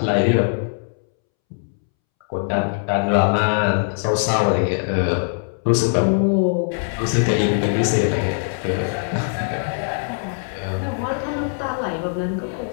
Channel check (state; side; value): silent; right; 65 dB below the other